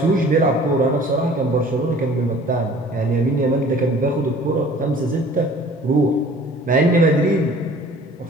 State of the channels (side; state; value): both; normal; correlation 0.49